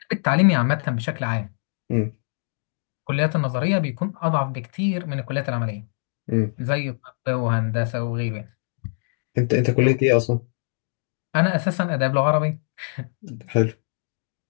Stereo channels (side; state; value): right; silent; digital silence